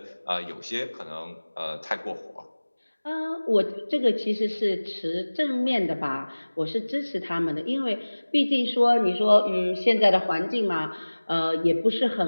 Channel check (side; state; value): both; inverted; correlation -1.00